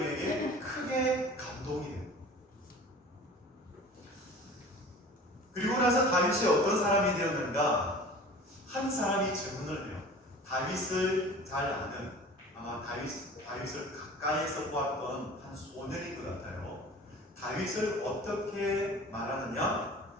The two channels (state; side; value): normal; both; correlation 0.41